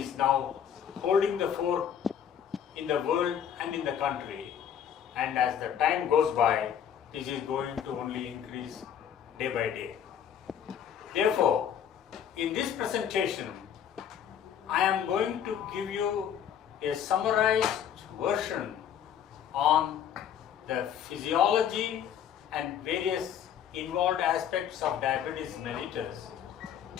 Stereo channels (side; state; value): right; quieter; 9.0 dB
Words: now holding the fore in the world and in the country. And as the time goes by, this is going to only increase day by day. Therefore, in this presentation, I am going to give you a summarized version on the physiology and various involved aspects of diabetes mellitus.